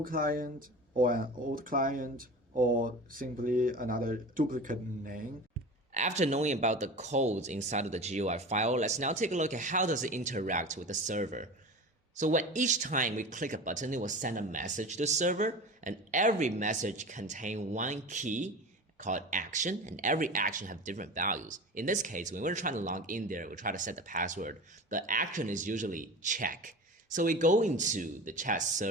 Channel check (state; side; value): normal; both; correlation 0.33